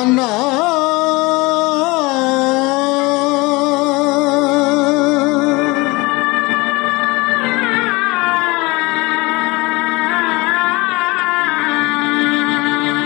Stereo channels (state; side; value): quieter; right; 23.8 dB